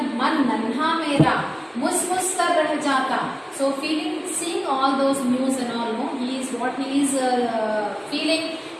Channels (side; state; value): both; identical; correlation 1.00